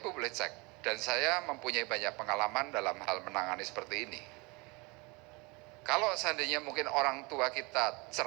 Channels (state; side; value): quieter; left; 27.1 dB